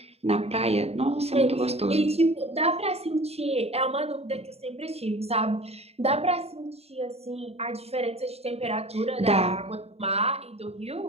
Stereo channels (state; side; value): late; left; 0.30 ms